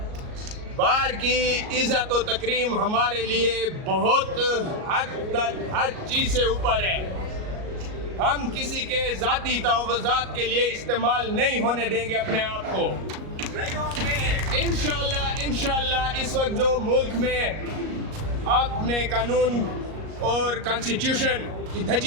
بار کی عزت و تکریم ہمارے لیے بہت حد تک ہر چیز سے اوپر ہے۔ ہم کسی کے ذاتی تحفظات کے لیے استعمال نہیں ہونے دیں گے اپنے آپ کو۔ انشاءاللہ اس وقت جو ملک میں آپ نے قانون اور کانسٹیٹیوشن کی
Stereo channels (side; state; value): left; late; 38 ms